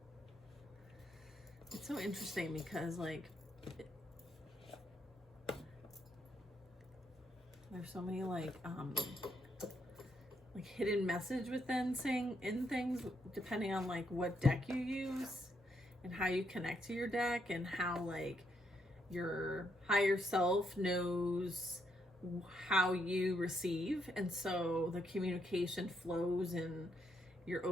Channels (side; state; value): both; normal; correlation 0.77